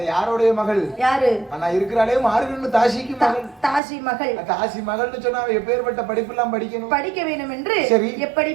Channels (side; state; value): left; drops out; at 3.8 s